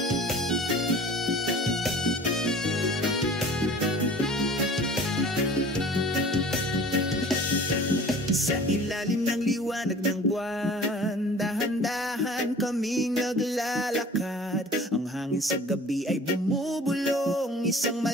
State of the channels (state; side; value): normal; both; correlation 0.45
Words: Sa ilalim ng liwanag ng buwan, dahan-dahan kaming naglalakad. Ang hangin sa gabi ay bumubulong, isang